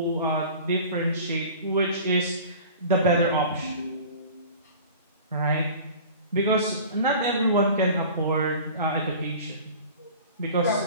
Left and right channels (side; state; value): both; inverted; correlation -0.41